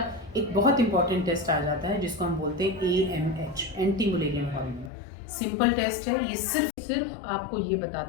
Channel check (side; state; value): right; drops out; at 4.9 s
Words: एक बहुत इंपॉर्टेंट टेस्ट आ जाता है जिसको हम बोलते हैं AMH, anti Mullerian hormone. Simple test है, ये सिर्फ आपको ये